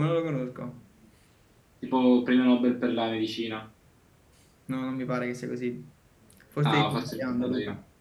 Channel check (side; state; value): both; identical; correlation 1.00